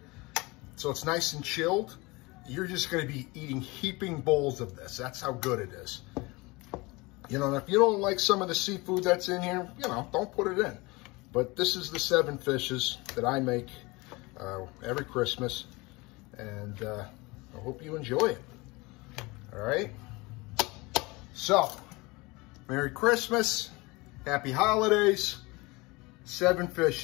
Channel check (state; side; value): quieter; right; 24.2 dB